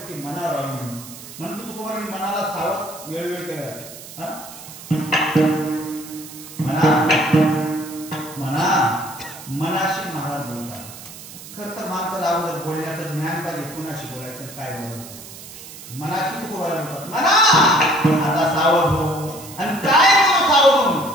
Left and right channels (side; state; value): right; noise; hiss, 15 dB below the sound